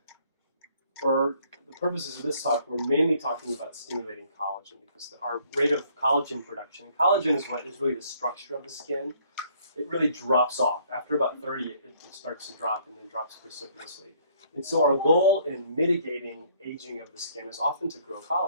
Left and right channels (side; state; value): both; inverted; correlation -0.63